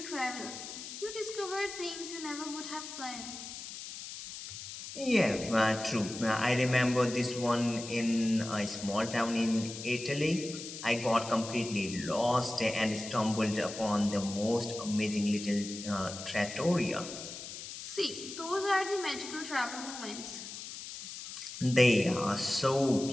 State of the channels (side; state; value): left; noise; hiss, 10 dB below the sound